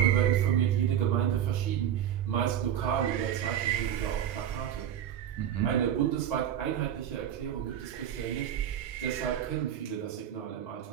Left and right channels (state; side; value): quieter; left; 10.1 dB